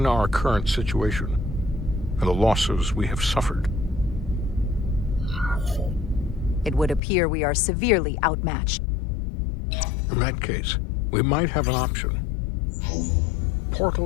our current situation and the losses we have suffered? It would appear we are severely outmatched. In that case, we might have an option.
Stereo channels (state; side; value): drops out; right; at 7.0 s